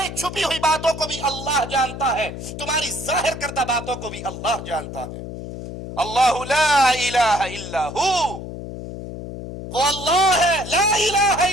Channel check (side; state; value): left; noise; hum, 9 dB below the sound